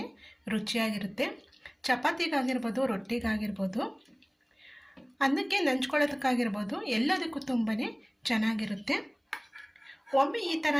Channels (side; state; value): both; identical; correlation 1.00